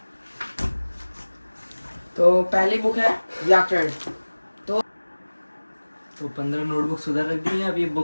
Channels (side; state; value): both; inverted; correlation -1.00